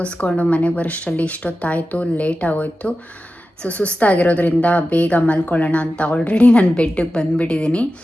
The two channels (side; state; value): both; normal; correlation 0.93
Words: ಮನೆಗೆ ಬರೋಷ್ಟರಲ್ಲಿ ಇಷ್ಟೊತ್ತಾಯಿತು, ಲೇಟ್ ಆಗೋಯ್ತು. ಸೊ ಸುಸ್ತಾಗಿರೋದ್ರಿಂದ ಬೇಗ ಮಲ್ಕೊಳ್ಳೋಣ ಅಂತ ಆಲ್ರೆಡಿ ನಾನು ಬೆಡ್ಡಿಗೆ ಬಂದುಬಿಟ್ಟಿದ್ದೀನಿ.